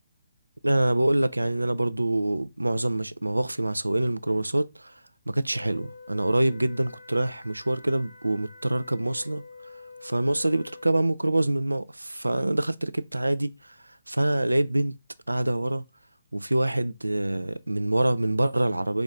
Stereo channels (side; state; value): both; inverted; correlation -0.98